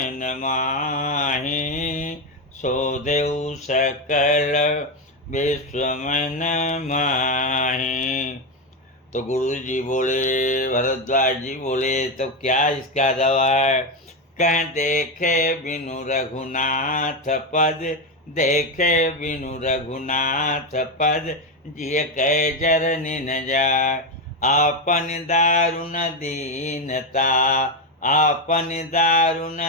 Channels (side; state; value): both; normal; correlation 0.10